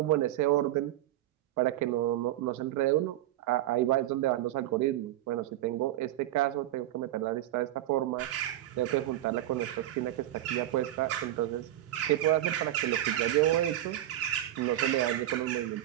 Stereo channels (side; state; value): left; quieter; 13.7 dB